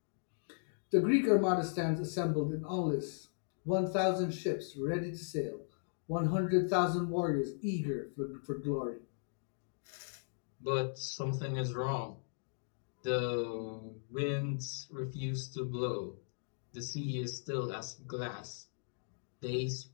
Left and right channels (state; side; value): silent; right; digital silence